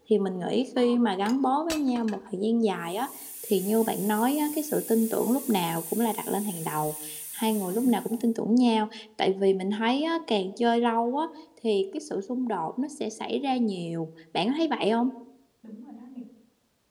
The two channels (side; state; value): both; identical; correlation 1.00